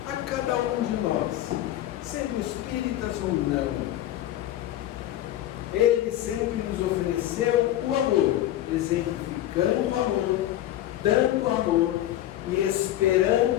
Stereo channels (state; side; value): quieter; right; 13.5 dB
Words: a cada um de nós, sendo espíritas ou não? Ele sempre nos ofereceu o amor, exemplificando o amor, dando amor e esperando